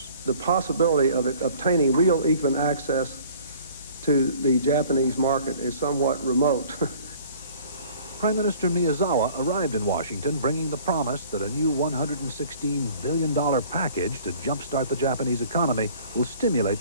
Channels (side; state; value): both; inverted; correlation -0.51